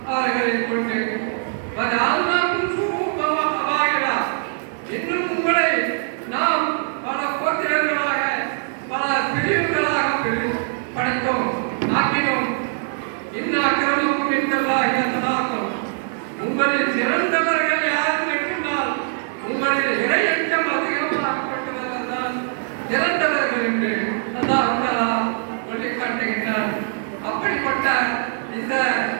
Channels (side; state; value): left; silent; 64 dB below the other